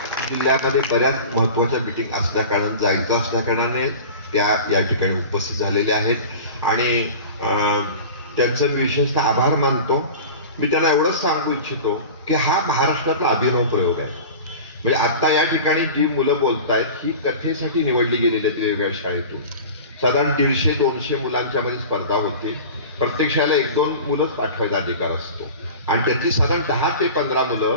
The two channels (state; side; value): inverted; both; correlation -0.35